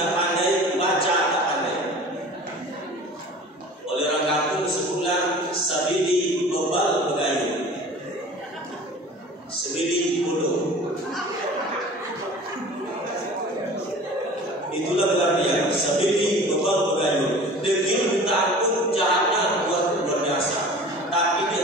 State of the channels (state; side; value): normal; both; correlation 0.42